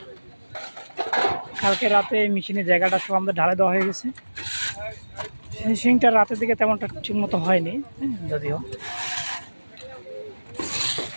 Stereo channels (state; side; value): inverted; both; correlation -1.00